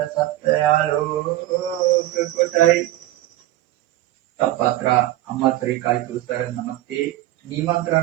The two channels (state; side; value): quieter; left; 15.6 dB